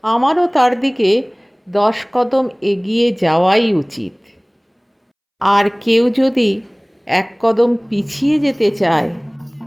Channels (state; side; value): identical; both; correlation 1.00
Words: আমারও তার দিকে 10 কদম এগিয়ে যাওয়াই উচিত। আর কেউ যদি এক কদম পিছিয়ে যেতে চায়,